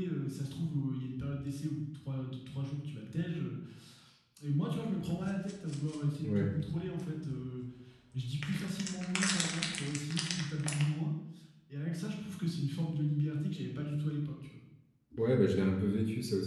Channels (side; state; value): both; identical; correlation 1.00